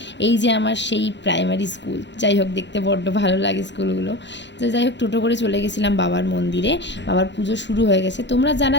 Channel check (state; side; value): late; right; 0.52 ms